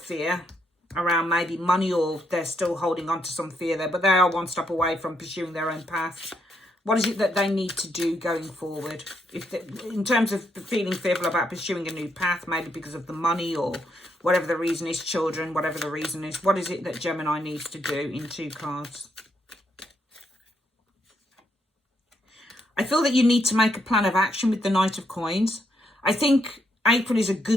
around maybe money, or they're still holding on to some fear there, but they are one step away from pursuing their own path. What is it that they need to do going forward? In terms of feeling fearful about pursuing a new path, maybe because of the money or whatever the reason is, children, whatever the reason is. What is it that Gemini needs to do in 2 cards? I feel that you need to make a plan of action with the Knight of Coins. I think April is a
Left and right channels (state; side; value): normal; both; correlation 0.76